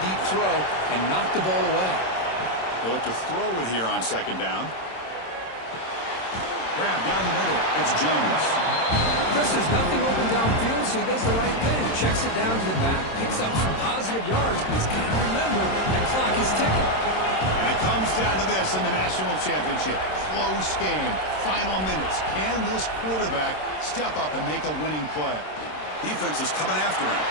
throw, and knock the ball away. They look to throw it here on second down. Grab down the middle. It's Jones. Chris, there's nothing open downfield, so he does the right thing. Checks it down to the back, picks up some positive yards, but he's got to remember the clock is ticking. And it comes down to this in the national championship. Close game. Final minutes. Can this quarterback step up and make a winning play? Defense is coming after him.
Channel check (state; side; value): late; right; 26 ms